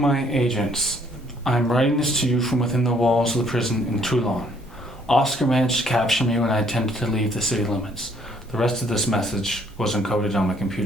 agents, I'm writing this to you from within the walls of the prison in Toulon. Oscar managed to capture me when I attempted to leave the city limits. The rest of this message was encoded on my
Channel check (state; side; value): normal; both; correlation 0.64